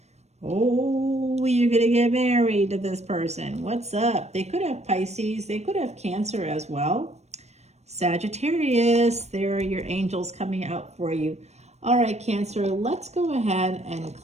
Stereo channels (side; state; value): left; late; 0.32 ms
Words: Oh, you're going to get married to this person. What's up? They could have Pisces. They could have Cancer as well. Sagittarius, there are your angels coming out for you. All right, Cancer, let's go ahead and